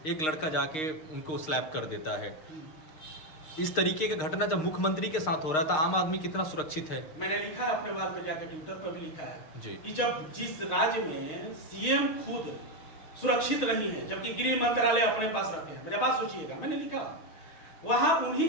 एक लड़का जाके उनको स्लैप कर देता है। इस तरीके का घटना जब मुख्यमंत्री के साथ हो रहा था, आम आदमी कितना सुरक्षित है? मैंने लिखा है अपने वाल पे जाकर, ट्विटर पर भी लिखा है जी कि जब जिस राज्य में सीएम खुद सुरक्षित नहीं है जबकि गृह मंत्रालय अपने पास रखे हैं, मेरे बात सोचिएगा, मैंने लिखा वहां उन्हीं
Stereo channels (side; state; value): right; late; 6.4 ms